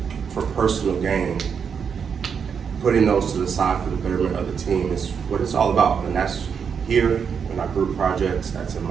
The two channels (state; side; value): quieter; left; 6.8 dB